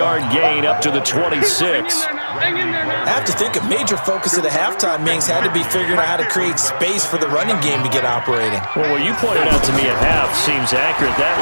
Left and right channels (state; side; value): inverted; both; correlation -1.00